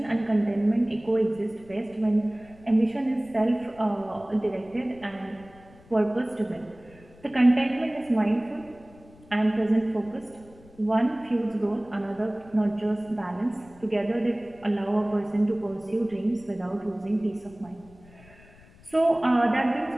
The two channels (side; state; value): left; noise; rumble, 24 dB below the sound